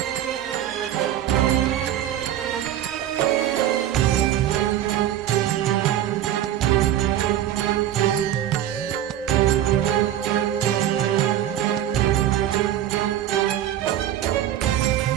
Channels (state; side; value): quieter; left; 11.6 dB